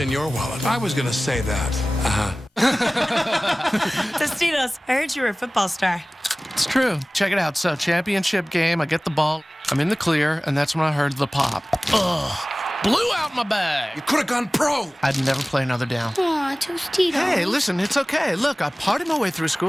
in your wallet? I was going to say that. Tostitos, I heard you were a football star. It's true. Check it out. So, championship game, I get the ball, I'm in the clear, and that's when I heard the pop. Ugh. Blew out my bag. You could have gone pro. I'd never play another down. Aw, Tostitos. Hey, listen, it's okay. Look, I partied my way through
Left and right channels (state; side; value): normal; both; correlation 0.98